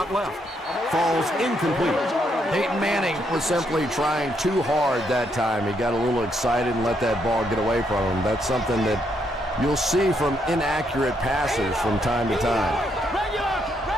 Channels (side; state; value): both; normal; correlation 0.75